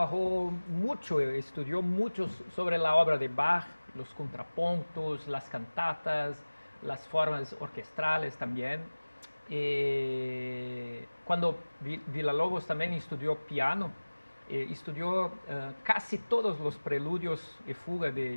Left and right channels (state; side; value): inverted; both; correlation -1.00